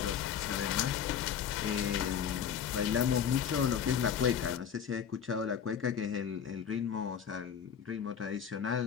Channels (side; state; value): right; quieter; 8.2 dB